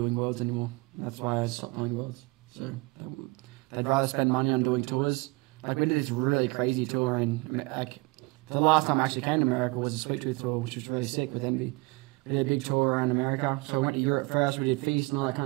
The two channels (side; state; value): left; quieter; 24.7 dB